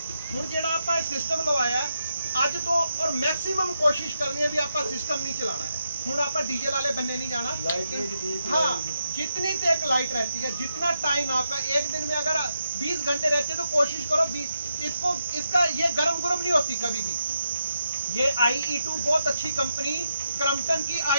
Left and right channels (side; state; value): both; inverted; correlation -0.82